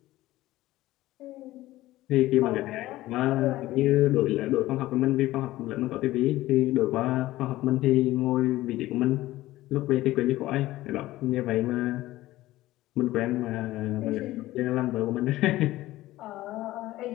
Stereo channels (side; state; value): right; quieter; 16.6 dB